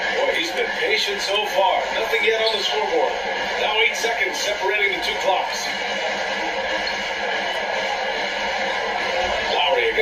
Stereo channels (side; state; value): both; identical; correlation 1.00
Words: Boy, he's been patient so far. Nothing yet on the scoreboard. Now 8 seconds separating the two clocks. Lowry